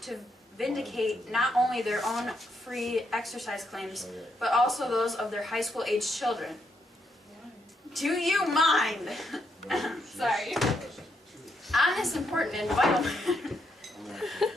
to vindicate not only their own free exercise claims, but also those of their high school age children. Do you mind? Sorry. On this important and vital matter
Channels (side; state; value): both; normal; correlation 0.78